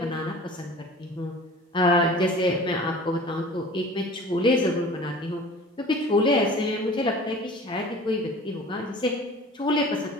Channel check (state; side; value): normal; both; correlation 0.43